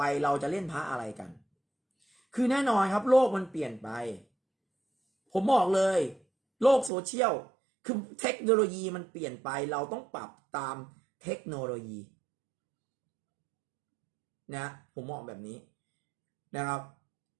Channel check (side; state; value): left; drops out; at 6.9 s